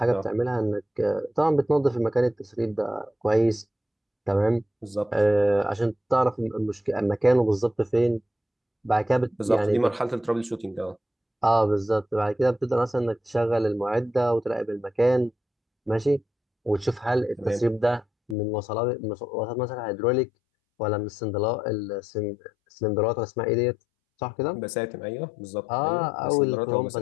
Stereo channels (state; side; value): drops out; right; at 18.4 s